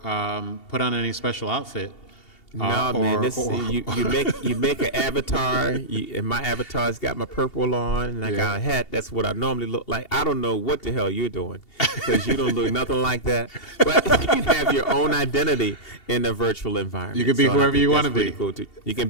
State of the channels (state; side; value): late; right; 2.7 ms